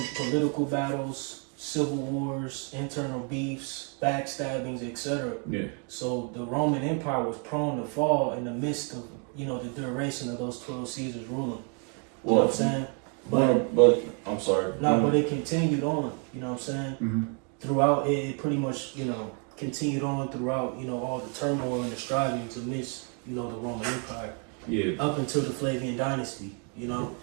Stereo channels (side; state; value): left; quieter; 36.9 dB